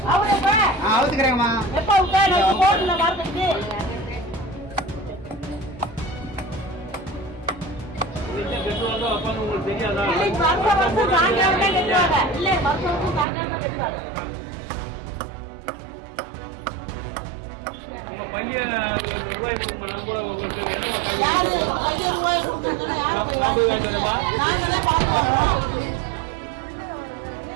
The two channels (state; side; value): drops out; left; at 13.2 s